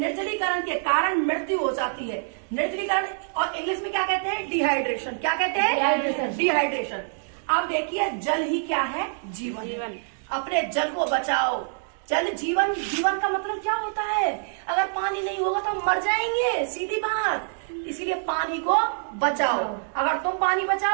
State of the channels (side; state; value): left; silent; digital silence